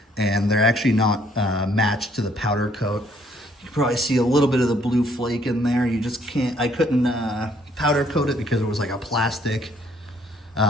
and they're actually not matched to the powder coat. You can probably see a little bit of the blue flake in there. You just can't, I couldn't powder coat it because it was like a plastic.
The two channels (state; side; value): normal; both; correlation 0.65